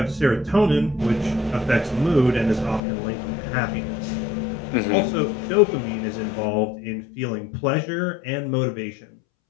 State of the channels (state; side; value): drops out; right; at 2.8 s